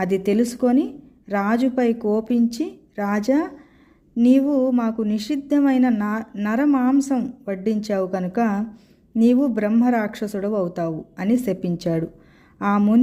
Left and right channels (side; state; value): both; identical; correlation 1.00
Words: తెలుసుకొని రాజుపై కోపించి, రాజా, నీవు మాకు నిషిద్ధమైన నరమాంసం వడ్డించావు కనుక నీవు బ్రహ్మరాక్షసుడు అవుతావు అని శపించాడు. ఆ